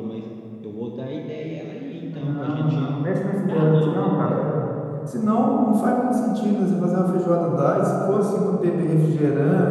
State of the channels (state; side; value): identical; both; correlation 1.00